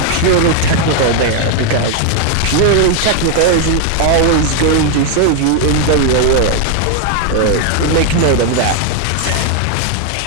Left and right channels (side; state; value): both; different; correlation 0.01